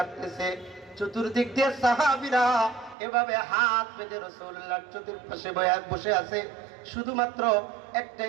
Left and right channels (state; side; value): drops out; left; at 3.0 s